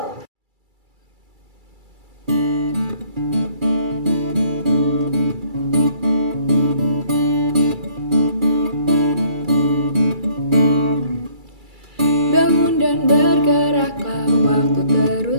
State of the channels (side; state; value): left; late; 2.3 ms